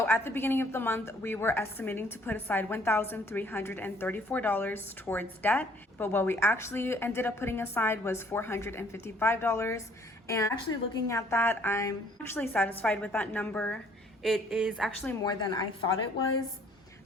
at the beginning of the month, we were estimating to put aside $1,334 towards debt, but what we actually ended up putting aside was $455. And actually looking at that, I'm actually satisfied with that number. It is actually more than I thought it was.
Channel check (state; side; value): normal; both; correlation 0.60